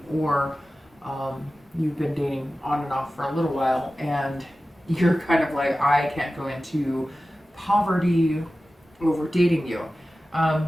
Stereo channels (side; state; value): both; normal; correlation 0.95